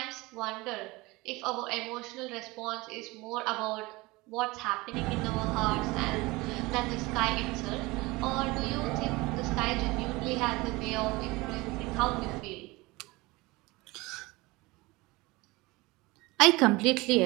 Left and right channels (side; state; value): left; quieter; 22.4 dB